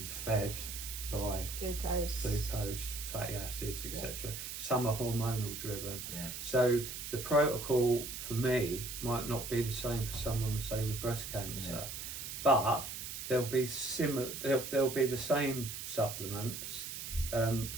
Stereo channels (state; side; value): noise; right; hiss, 7 dB below the sound